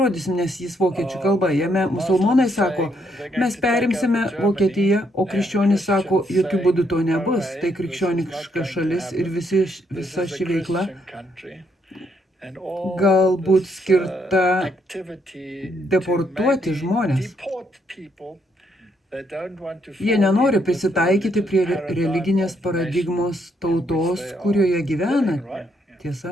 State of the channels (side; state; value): both; normal; correlation 0.74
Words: nes jis vokiečių kalba. Jame musulmonai sako, mes perimsime Vokietiją, o krikščionys sako, jokių būdų to nebus. Tai krikščioniška šalis ir visa ši veikla galbūt skirta deportuoti žmonės. Jie nenori prisitaikyti prie religinės paradigmos tautos, kurioje gyvena.